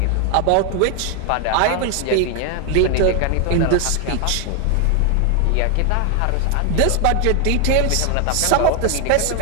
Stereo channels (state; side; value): different; both; correlation 0.01